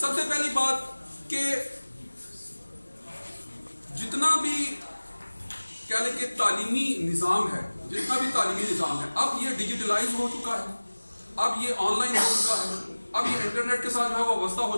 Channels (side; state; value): both; inverted; correlation -1.00